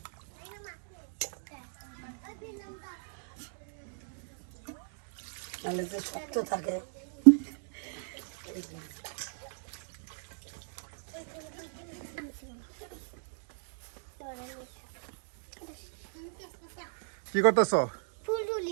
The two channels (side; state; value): left; silent; digital silence